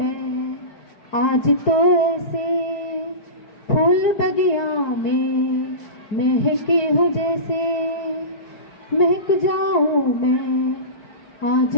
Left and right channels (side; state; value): right; late; 4.6 ms